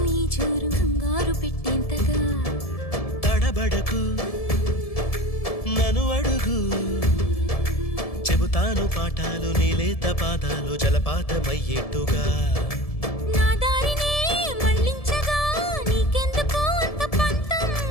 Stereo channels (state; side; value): late; right; 1.7 ms